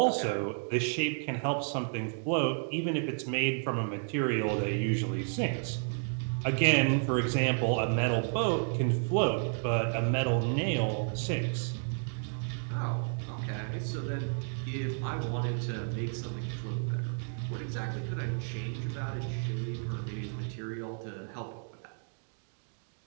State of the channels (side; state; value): left; silent; 56 dB below the other